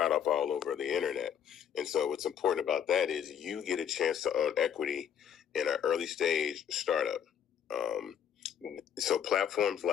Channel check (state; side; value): quieter; right; 8.8 dB